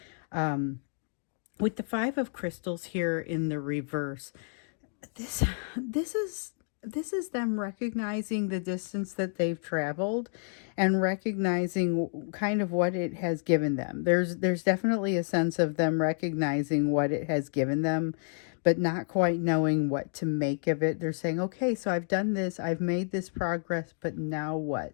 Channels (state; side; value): silent; right; 58 dB below the other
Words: With the Five of Crystals here in the reverse, this is them recognizing the distance that they've traveled, and recognizing kind of what it has given them. There's definitely a sense of them recognizing what it has given them, but not quite knowing what to make of it. They're saying, okay, so I've done this, I've made this progress, but now what?